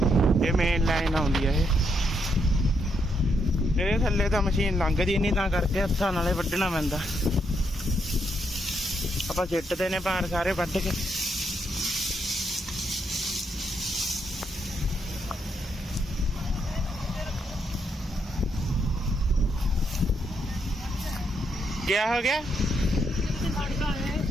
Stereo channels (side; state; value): both; normal; correlation 0.77